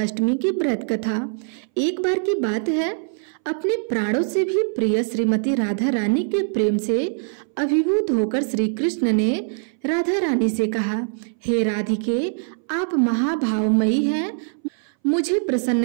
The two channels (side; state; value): left; silent; 62 dB below the other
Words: अष्टमी की व्रत कथा। एक बार की बात है, अपने प्राणों से भी प्रिय श्रीमती राधा रानी के प्रेम से अभिभूत होकर श्री कृष्ण ने राधा रानी से कहा, हे राधिके, आप महाभावमयी हैं। मुझे